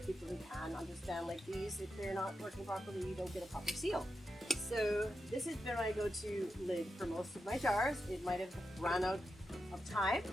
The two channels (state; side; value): normal; both; correlation 0.88